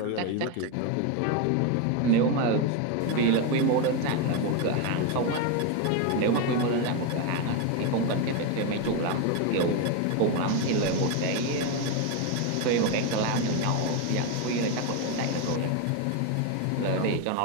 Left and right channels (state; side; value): different; both; correlation 0.02